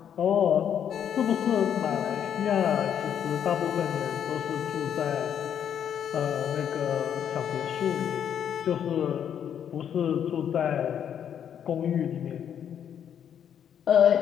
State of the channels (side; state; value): right; quieter; 8.9 dB